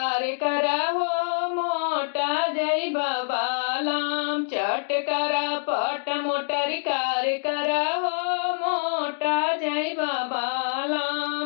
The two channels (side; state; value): right; silent; digital silence